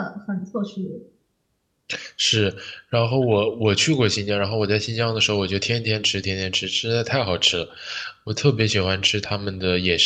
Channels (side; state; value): both; identical; correlation 1.00